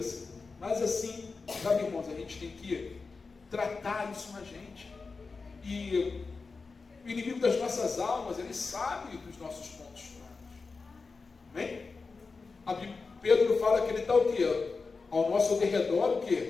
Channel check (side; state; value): right; quieter; 4.4 dB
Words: Senhor. Mas assim, sabe, irmãos, a gente tem que tratar isso na gente. E o inimigo das nossas almas, ele sabe dos nossos pontos fracos. Amém? Pedro fala que ele está o quê? Ao nosso derredor, o